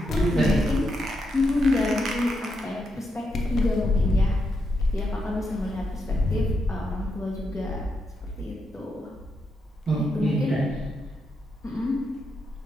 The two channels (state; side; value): normal; both; correlation 0.83